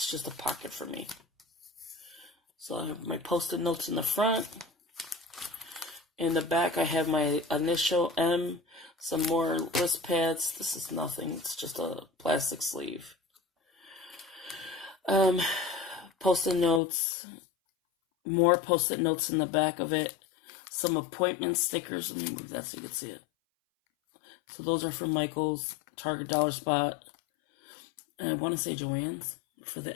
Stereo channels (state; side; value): drops out; right; at 16.8 s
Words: just a pocket for me. So I have my post-it notes in the front. In the back, I have my initial M, some more list pads. This is nothing. It's just a plastic sleeve. Post-it notes. More post-it notes in the back of it. Some appointment stickers. Let me move that so you can see it. So those are from Michael's, Target, Dollar Spot. And I want to say Joann's for the